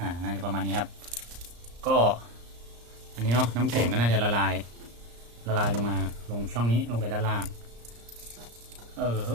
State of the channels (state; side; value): late; left; 34 ms